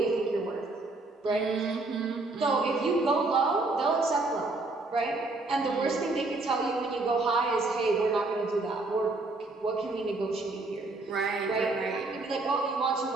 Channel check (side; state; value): left; quieter; 3.2 dB